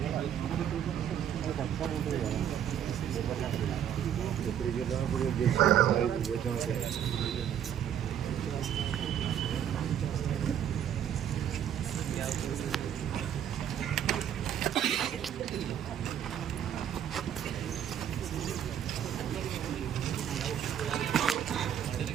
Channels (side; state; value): left; quieter; 9.7 dB